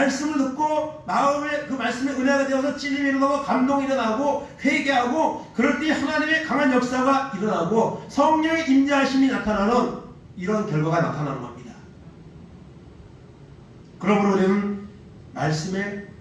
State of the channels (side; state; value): both; identical; correlation 1.00